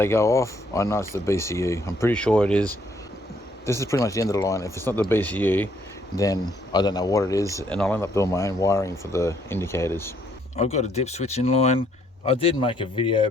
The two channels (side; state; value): both; normal; correlation 0.68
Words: go off, I know it's the BCU. I'm pretty sure it is. This is pretty much the end of the line. If it's not the BCU, then I don't know what it is, and I'll end up doing my own wiring for the indicators. I've got a dip switch in line. I did make a video